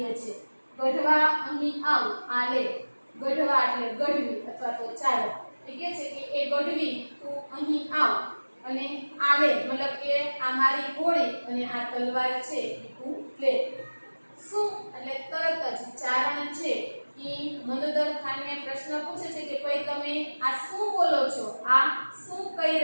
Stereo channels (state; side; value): inverted; both; correlation -1.00